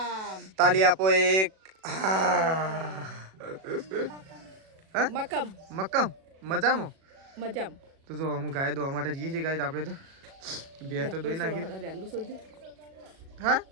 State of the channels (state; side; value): late; left; 37 ms